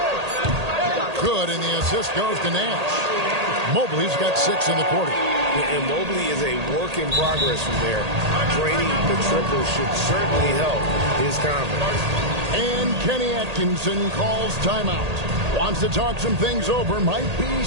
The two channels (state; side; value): late; left; 1.8 ms